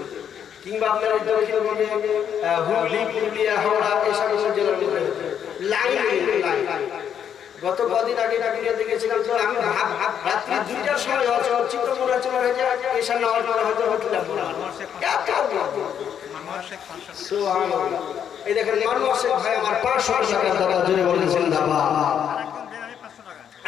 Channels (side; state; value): right; quieter; 8.7 dB